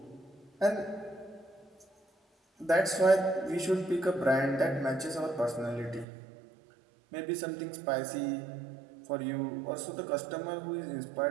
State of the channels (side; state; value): left; drops out; at 6.1 s